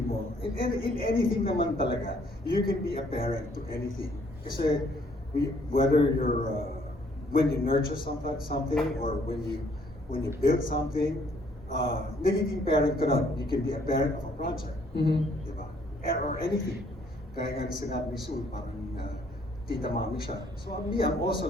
mo. In anything naman talaga, you can be a parent to anything. Kasi whether you're, when you nurture something or when you build something, nagiging parent ka nun. You can be a parent of a project. Mhm. Diba? Or anything. Kaya nga sinabi ni Sue, parang tita mami siya. So me, I'm also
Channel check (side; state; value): both; normal; correlation 0.64